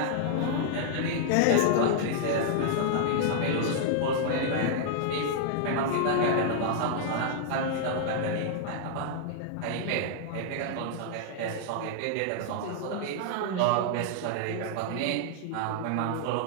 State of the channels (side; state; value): both; different; correlation -0.01